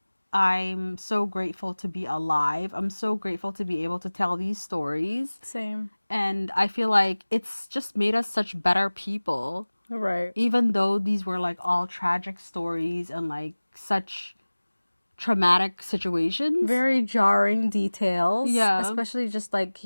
I'm so grateful to be alive. I'm so grateful to be able to tell these stories. Same. And I feel like it's just made us such better people. Right. Even though these were like all tragic stories and like such traumatic situations. Very jarring details. Yeah. Especially just like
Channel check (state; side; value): inverted; both; correlation -1.00